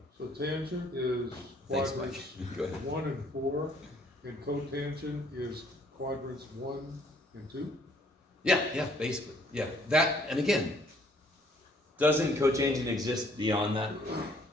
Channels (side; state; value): both; normal; correlation 0.62